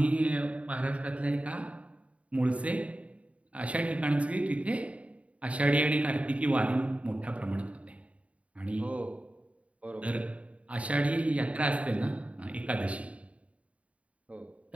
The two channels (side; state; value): left; late; 0.065 ms